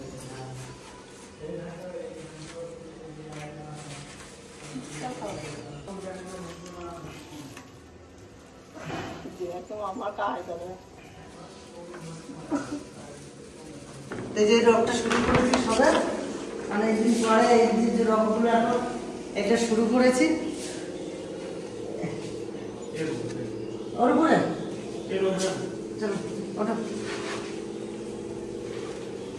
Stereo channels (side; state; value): both; identical; correlation 1.00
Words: এই যে রকটা শুরু করেছি সবে, অনেকদিন পরে এই যে রকগুলো এখন এটা শুরু করেছি। ওর উপরে চলো ওটা